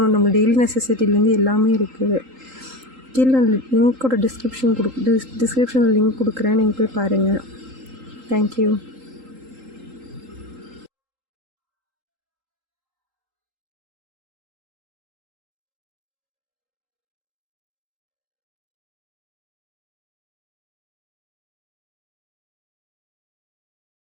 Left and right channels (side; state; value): left; late; 3.8 ms